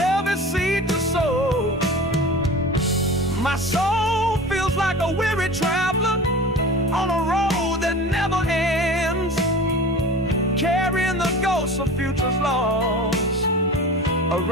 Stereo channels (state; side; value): normal; both; correlation 0.36